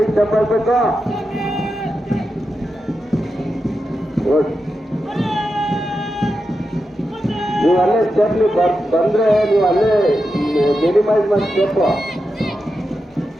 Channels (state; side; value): normal; both; correlation 0.88